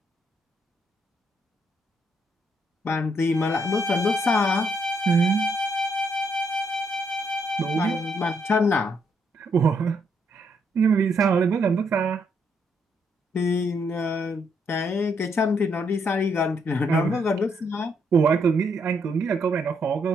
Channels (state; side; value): normal; both; correlation 0.74